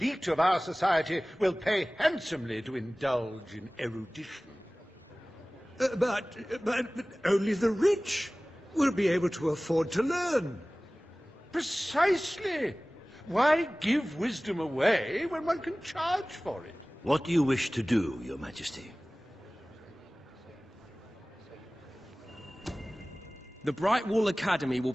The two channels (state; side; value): normal; both; correlation 0.98